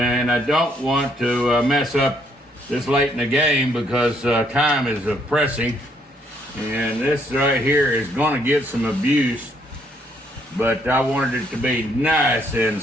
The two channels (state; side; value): normal; both; correlation 0.69